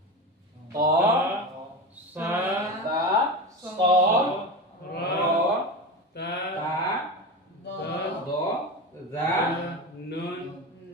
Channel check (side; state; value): both; normal; correlation 0.24